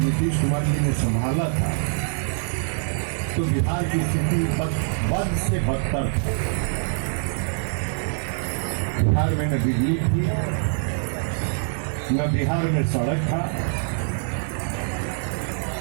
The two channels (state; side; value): silent; left; 62 dB below the other